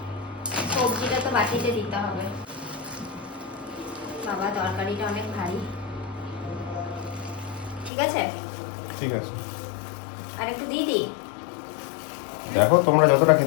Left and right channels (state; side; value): drops out; right; at 7.9 s